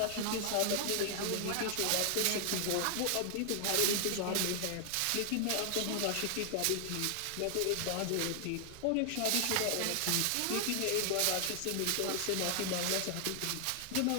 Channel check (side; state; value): both; different; correlation 0.00